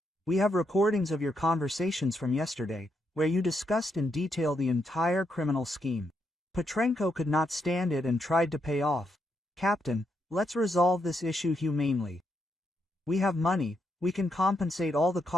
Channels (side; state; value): both; normal; correlation 0.80